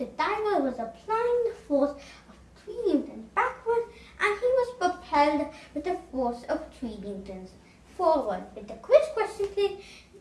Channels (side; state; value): both; identical; correlation 1.00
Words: diver was applying the force of 3 newtons backward, and he was propelled with the force of 3 newtons forward. With the quiz question today,